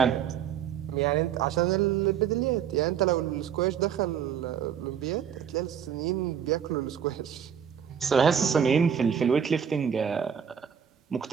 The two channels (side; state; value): left; quieter; 8.2 dB